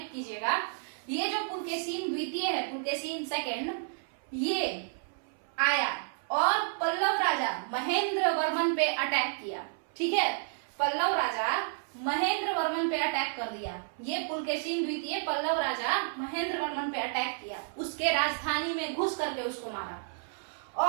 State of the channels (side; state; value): left; silent; 57 dB below the other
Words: कीजिएगा। ये जो पुलकेशिन द्वितीय है, पुलकेशिन सेकंड, ये आया और पल्लव राजा महेंद्र वर्मन पे अटैक किया, ठीक है। पल्लव राजा महेंद्र वर्मन पे अटैक कर दिया। ये पुलकेशिन द्वितीय पल्लव राजा महेंद्र वर्मन पे अटैक किया, उसके राजधानी में घुस करके उसको मारा।